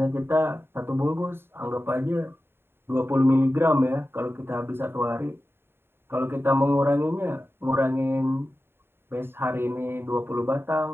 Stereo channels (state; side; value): late; left; 0.11 ms